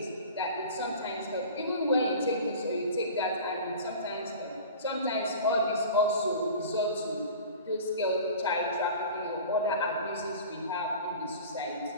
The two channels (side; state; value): both; inverted; correlation -0.38